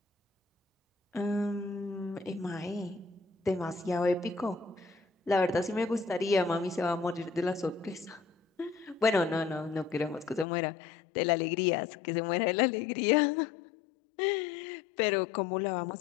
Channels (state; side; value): drops out; right; at 10.5 s